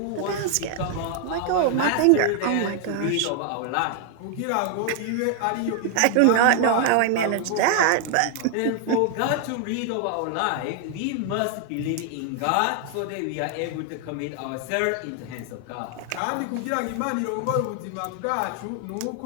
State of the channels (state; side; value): different; both; correlation 0.00